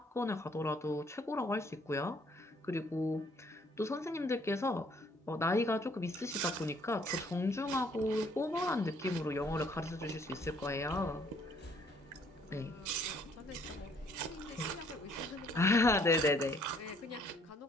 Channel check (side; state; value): both; normal; correlation 0.63